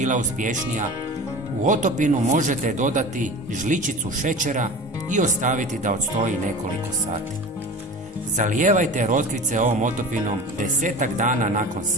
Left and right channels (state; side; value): normal; both; correlation 0.35